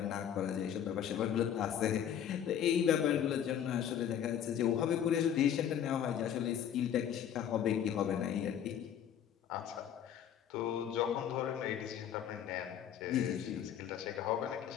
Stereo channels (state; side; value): quieter; right; 9.4 dB